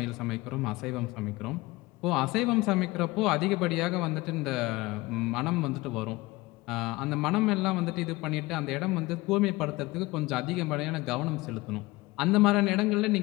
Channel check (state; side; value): quieter; right; 21.0 dB